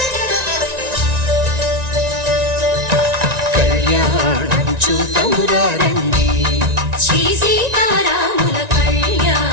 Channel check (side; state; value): left; late; 1.9 ms